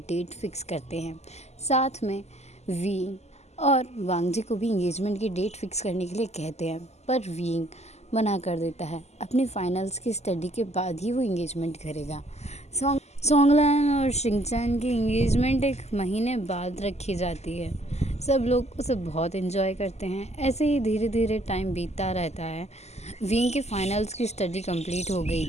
फिक्स करते हैं। साथ में वीइंग और वांगजी को भी एंगेजमेंट की डेट फिक्स करने के लिए कहते हैं, पर वीइंग मना कर देता है। अपनी फाइनल्स की स्टडी के बाद ही वो एंगेजमेंट करेगा। सॉन्गलैन और शिंगचैन की एंगेजमेंट एक महीने बाद रखी जाती है। सब लोग उसे बहुत एंजॉय करते हैं। ऐसे ही धीरे धीरे टाइम बीतता रहता है। विंग की फाइनल्स की स्टडी कंप्लीट हो गई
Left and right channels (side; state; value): right; late; 0.32 ms